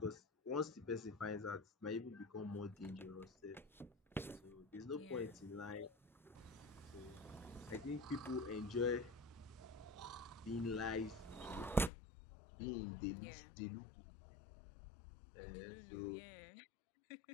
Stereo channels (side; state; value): right; drops out; at 11.9 s